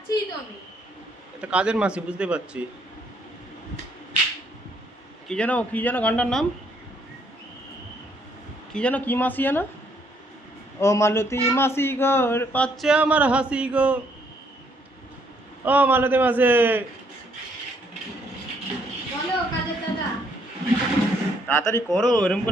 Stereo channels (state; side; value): normal; both; correlation 0.69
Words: তো আমি। এটা কাজের মাসি, বুঝতে পারছি। কি যেন গানটার নাম কি যেন, কি মাসি যেন? ও মালতী মাসি গো, পাচ্ছে আমার হাসি গো। ও মালতী মাসি, বলো কাজের দাদা। তাড়াতাড়ি করো, এরকম